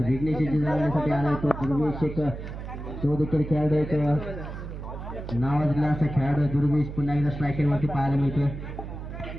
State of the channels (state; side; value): noise; right; hum, 9 dB below the sound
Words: विघ्नेशाची जाण्यासाठी आला तो दुर्वेश एक तो देखील खेळाडू एक नावाजला असा खेळाडू दुर्वेश पुन्हा एकदा स्ट्रायकर वरती पाहायला मिळतोय.